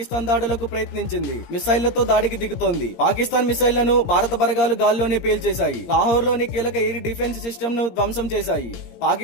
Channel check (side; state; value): right; late; 17 ms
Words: దాడులకు ప్రయత్నించింది. మిసైళ్లతో దాడికి దిగుతోంది. పాకిస్తాన్ మిసైళ్లను భారత బలగాలు గాల్లోనే పేల్చేశాయి. లాహోర్ లోని కీలక ఎయిర్ డిఫెన్స్ సిస్టమ్ ను ధ్వంసం చేశాయి.